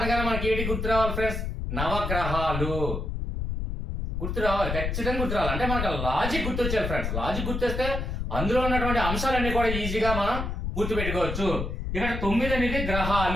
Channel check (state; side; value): noise; left; rumble, 3 dB below the sound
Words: మనకి ఏంటి గుర్తు రావాలి ఫ్రెండ్స్? నవగ్రహాలు గుర్తు రావాలి, ఖచ్చితంగా గుర్తు రావాలి. అంటే మనకు లాజిక్ గుర్తొచ్చాలి ఫ్రెండ్స్. లాజిక్ గుర్తొస్తే అందులో ఉన్నటువంటి అంశాలన్నీ కూడా ఈజీగా మనం గుర్తుపెట్టుకోవచ్చు. ఇక్కడ 9 అనేది